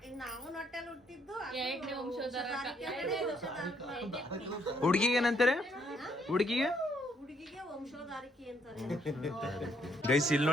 ನಾವು ಹೊಟ್ಟೆಲ್ ಹುಟ್ಟಿದ್ದು ಎರಡನೇ ವಂಶಧಾರಕ. ಹುಡುಗಿಗೆ ಏನಂತಾರೆ? ಹುಡುಗಿಗೆ ವಂಶಧಾರಿಕೆ ಅಂತಾರೆ. ಗೈಸ್ ಇಲ್ಲಿ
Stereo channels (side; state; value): both; normal; correlation 0.70